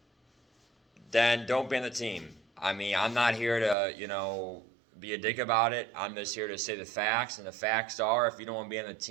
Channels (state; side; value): drops out; left; at 3.8 s